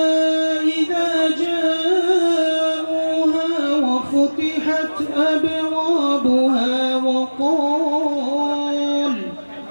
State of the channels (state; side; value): inverted; both; correlation -1.00